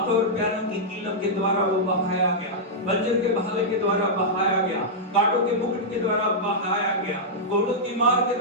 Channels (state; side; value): normal; both; correlation -0.08